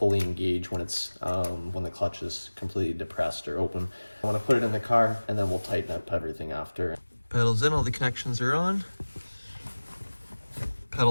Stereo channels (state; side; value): inverted; both; correlation -1.00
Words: engage when it's when the clutch is completely depressed or open. I want to put it in the car, and then we'll tighten up everything after. Pedals in, all the connections are on.